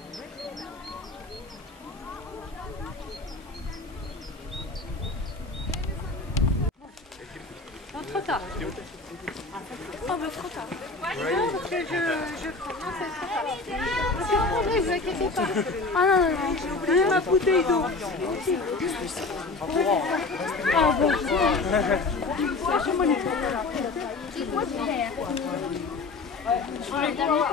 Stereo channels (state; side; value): quieter; right; 3.7 dB